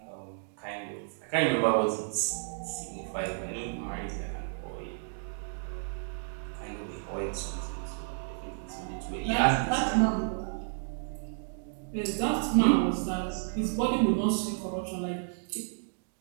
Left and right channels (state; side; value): silent; left; digital silence